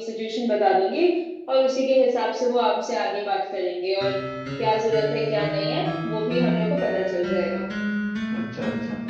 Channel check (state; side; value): identical; both; correlation 1.00